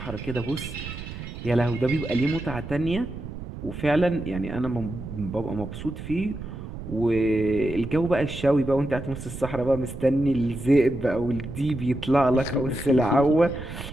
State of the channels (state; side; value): noise; right; rumble, 10 dB below the sound